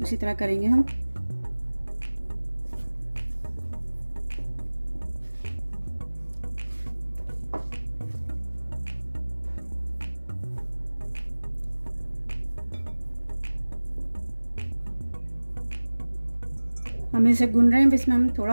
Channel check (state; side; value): inverted; both; correlation -1.00